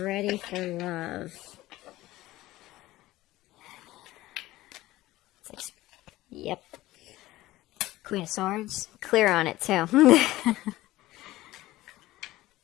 for love. Yep. Queen of Swords. Clear on it, too.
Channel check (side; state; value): right; quieter; 17.0 dB